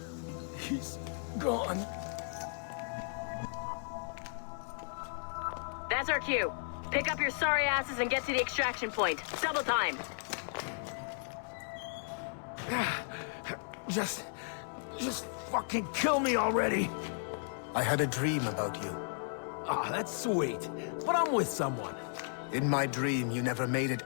gone. That's our cue. Pick up your sorry asses and get to the extraction point. Double time. Just fucking kill me already. I had a dream about you. Ah, that's sweet. But I'm with someone. In my dream, you never made it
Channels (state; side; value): silent; right; digital silence